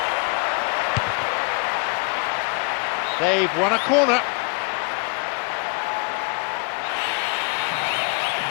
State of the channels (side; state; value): right; quieter; 35.0 dB